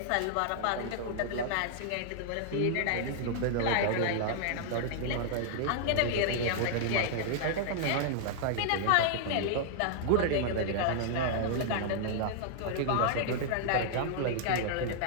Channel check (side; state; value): both; different; correlation -0.01